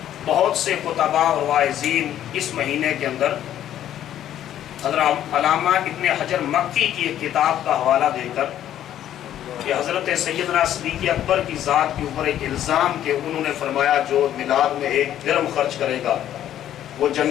بہت سے خطباء اور واعظین اس مہینے کے اندر حضرت علامہ ابن حجر مکی کی ایک کتاب کا حوالہ دے کر کہ حضرت سیدنا صدیق اکبر کی ذات کے اوپر ایک الزام کہ انہوں نے فرمایا جو میلاد میں ایک درم خرچ کرے گا وہ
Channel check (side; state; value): right; quieter; 11.4 dB